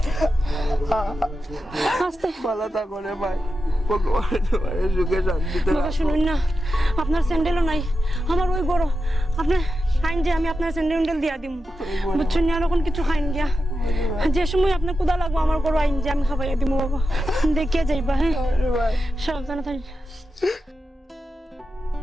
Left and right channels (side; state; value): both; normal; correlation 0.90